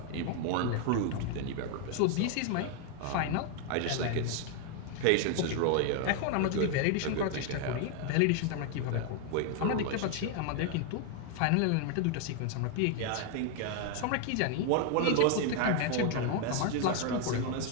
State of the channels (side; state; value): both; different; correlation 0.01